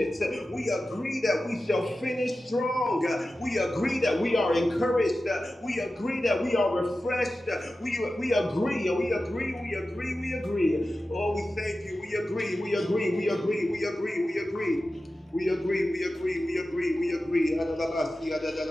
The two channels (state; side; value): normal; both; correlation 0.94